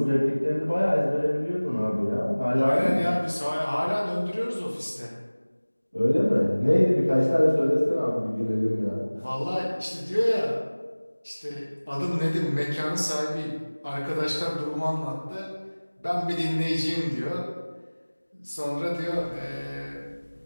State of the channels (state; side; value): inverted; both; correlation -1.00